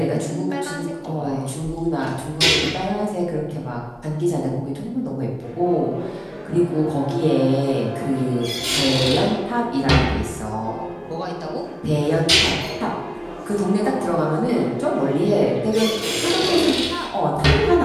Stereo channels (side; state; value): both; identical; correlation 1.00